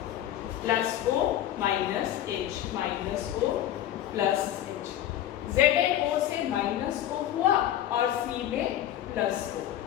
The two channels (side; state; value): right; quieter; 12.1 dB